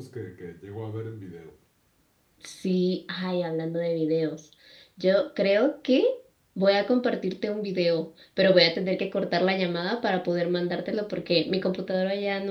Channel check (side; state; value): both; identical; correlation 1.00